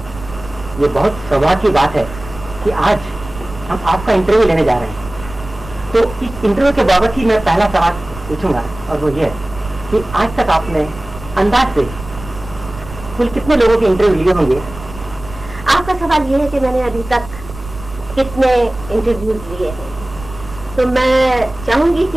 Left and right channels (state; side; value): noise; right; rumble, 15 dB below the sound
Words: ये बहुत सौभाग्य की बात है कि आज हम आपका इंटरव्यू लेने जा रहे हैं। तो इस इंटरव्यू के बाबत ही मैं पहला सवाल पूछूंगा, और वो ये है कि आज तक आपने अंदाज से कुल कितने लोगों के इंटरव्यू लिए होंगे? आपका सवाल ये है कि मैंने अभी तक कितने इंटरव्यूज लिए हैं, तो मैं चाहूंगी